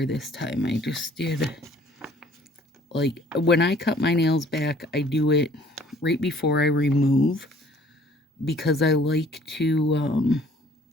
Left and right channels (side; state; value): both; normal; correlation 0.56